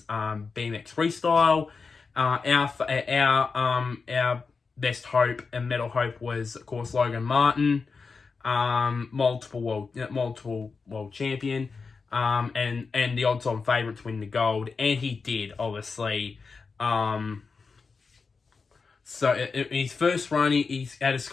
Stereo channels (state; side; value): quieter; right; 4.8 dB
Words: BMX freestyle. Our best hope and medal hope was, of course, Logan Martin, multiple world champion, and the odds-on favourite to win the gold, and he did, obviously. So in his first run, he had a